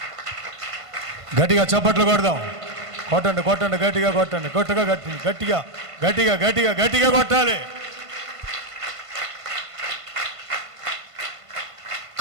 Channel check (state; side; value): late; left; 1.5 ms